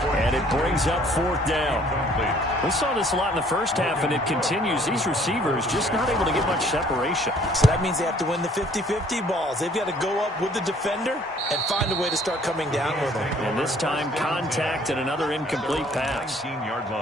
And it brings up 4th down. We saw this a lot in the first half, and it continues. These receivers just not able to get much separation. So that means they have to win the 50-50 balls. They've got to go up with the defender and find a way to start coming down with them. And this time, contact and another incomplete pass. 19-yard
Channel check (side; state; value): both; normal; correlation 0.59